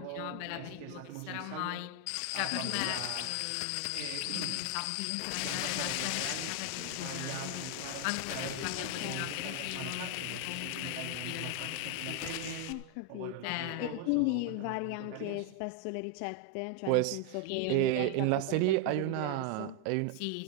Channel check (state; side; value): different; both; correlation 0.01